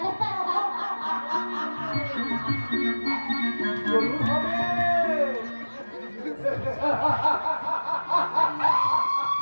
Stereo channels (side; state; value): both; inverted; correlation -1.00